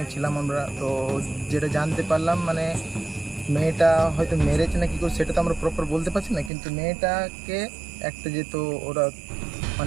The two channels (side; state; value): left; drops out; at 6.5 s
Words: ছিলাম আমরা। তো যেটা জানতে পারলাম মানে মেয়েটা হয়তো মেরেছে না কি করে সেটা তো আমরা প্রপার বলতে পারছি না, কিন্তু মেয়েটাকে একটা যেহেতু ওরা